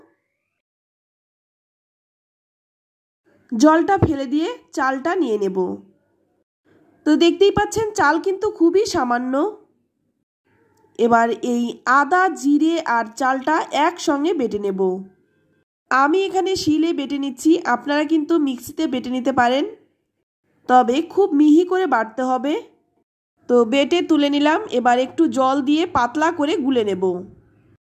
জলটা ফেলে দিয়ে চালটা নিয়ে নেব। তো দেখতেই পাচ্ছেন চাল কিন্তু খুবই সামান্য। এবার এই আদা, জিরে আর চালটা একসঙ্গে বেটে নেব। আমি এখানে শিলে বেটে নিচ্ছি, আপনারা কিন্তু মিক্সিতে বেটে নিতে পারেন, তবে খুব মিহি করে বাটতে হবে। তো বেটে তুলে নিলাম। এবার একটু জল দিয়ে পাতলা করে গুলে নেব।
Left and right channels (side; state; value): both; identical; correlation 1.00